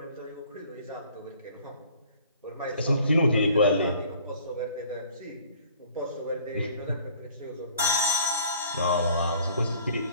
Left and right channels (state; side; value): inverted; both; correlation -0.54